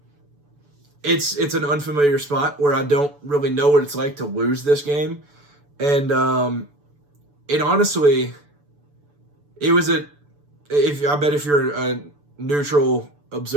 it's an unfamiliar spot where I don't really know what it's like to lose this game, and it honestly. It was I bet if you're a neutral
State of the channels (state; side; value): late; left; 6.9 ms